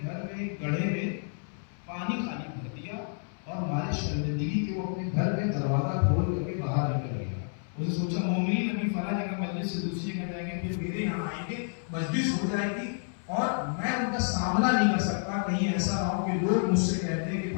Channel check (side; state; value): right; silent; 58 dB below the other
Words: گھر میں ایک گڑھے میں پانی خالی بھر دیا اور ہمارے شرمندگی کے وہ اپنے گھر میں دروازہ کھول کر کے باہر نکل گیا. اسے سوچا مومنین ابھی فلاں جگہ مجلس سے دوسری جگہ جائیں گے، پھر میرے یہاں آئیں گے، مجلس ہو جائے گی اور میں ان کا سامنا نہیں کر سکتا. کہیں ایسا نہ ہو کہ لوگ مجھ سے کہتے ہیں کہ